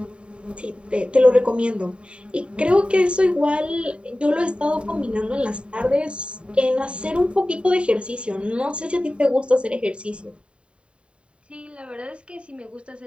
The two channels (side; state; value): left; late; 0.056 ms